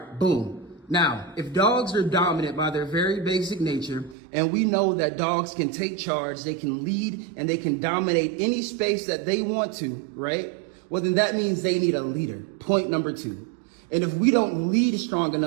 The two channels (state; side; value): drops out; left; at 4.2 s